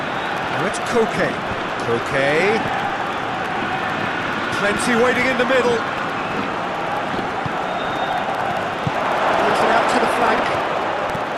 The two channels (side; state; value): both; identical; correlation 1.00